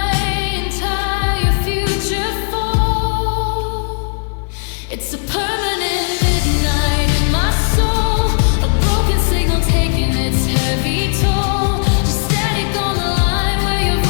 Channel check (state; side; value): silent; right; 59 dB below the other